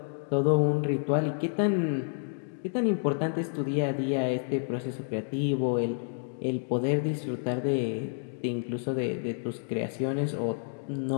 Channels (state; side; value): silent; right; digital silence